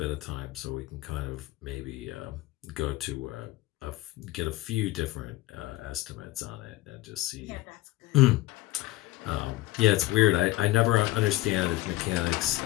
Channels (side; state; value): right; quieter; 17.7 dB